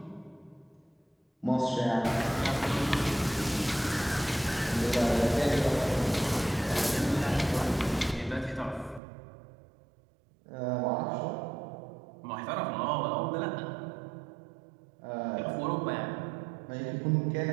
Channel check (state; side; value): drops out; left; at 9.0 s